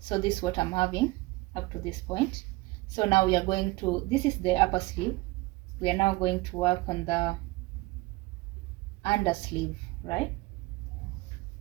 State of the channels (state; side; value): quieter; left; 21.6 dB